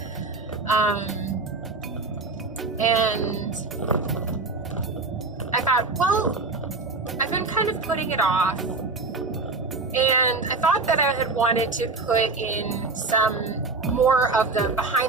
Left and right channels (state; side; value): quieter; left; 3.7 dB